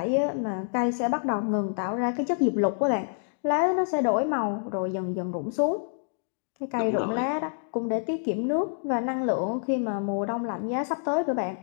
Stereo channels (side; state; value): right; silent; digital silence